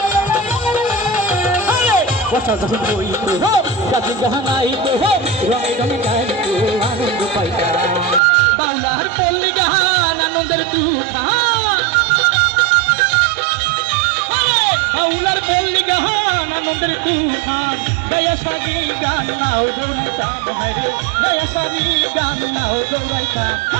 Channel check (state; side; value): drops out; left; at 8.2 s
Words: সাধু হইত কাজী গাহানাইত রঙে রঙে গাইত আনন্দ পাইতাম বাউলার পল্লী গান আনন্দের তুফান বাউলার পল্লী গান আনন্দের তুফান দয়া সাগি গান নাও দৌড়াইতাম হায়রে দয়া সাগি গান নাও দৌড়াইতাম